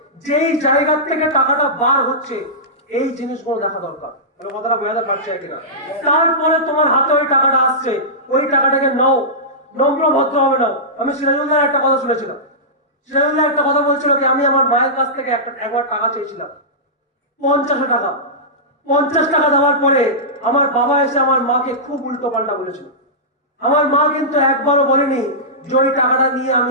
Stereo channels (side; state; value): both; normal; correlation -0.15